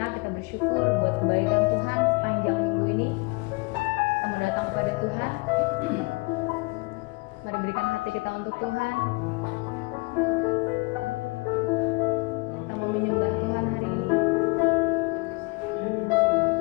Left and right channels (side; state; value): right; quieter; 27.4 dB